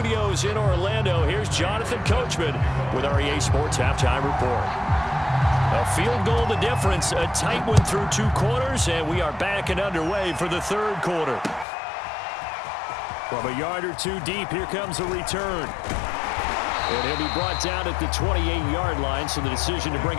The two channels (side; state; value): right; drops out; at 11.7 s